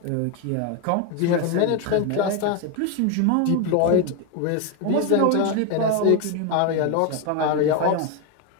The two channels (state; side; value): different; both; correlation 0.01